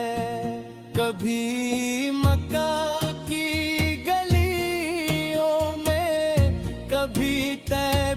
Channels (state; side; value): identical; both; correlation 1.00